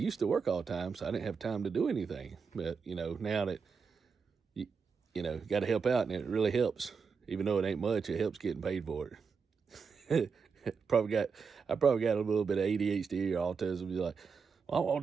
to work all the time, so I didn't have time to do anything. But, you know, now that, you know, got to help out, and it really helps. Even though it ain't much, it helps getting paid for it. I probably got a little bit of ADHD or autism. You're like, well, I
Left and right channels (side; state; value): left; quieter; 5.6 dB